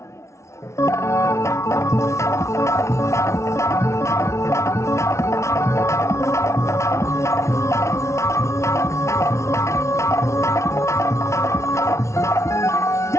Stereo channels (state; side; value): late; right; 0.14 ms